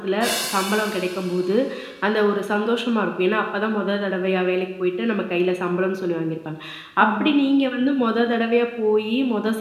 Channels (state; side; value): identical; both; correlation 1.00